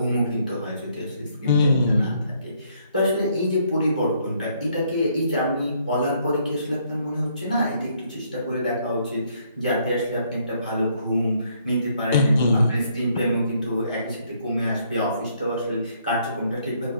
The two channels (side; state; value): both; inverted; correlation -0.69